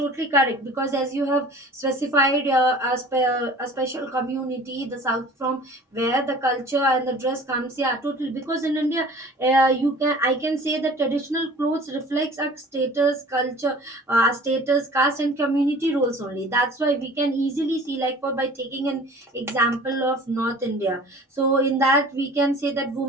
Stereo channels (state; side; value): normal; both; correlation 0.45